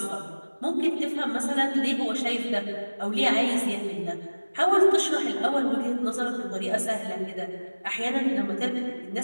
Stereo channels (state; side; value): inverted; both; correlation -1.00